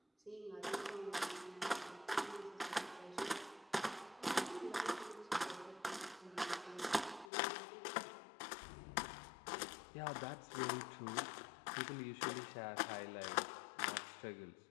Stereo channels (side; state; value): right; drops out; at 7.3 s